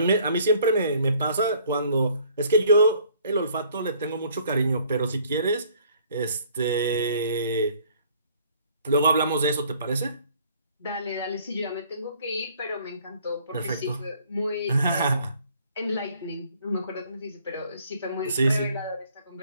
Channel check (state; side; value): inverted; both; correlation -0.59